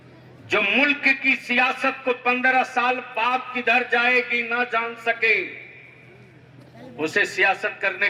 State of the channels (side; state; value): both; identical; correlation 1.00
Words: जो मुल्क की सियासत को 15 साल बाद किधर जाएगी ना जान सके, उसे सियासत करने